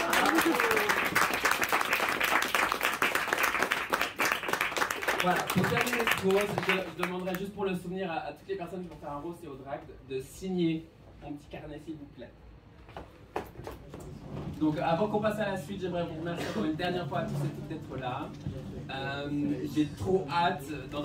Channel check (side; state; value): both; identical; correlation 1.00